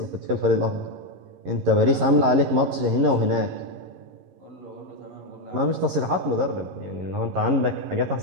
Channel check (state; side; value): late; left; 11 ms